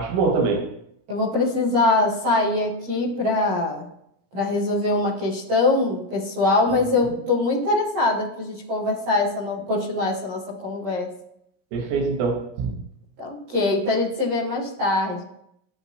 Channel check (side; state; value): left; late; 17 ms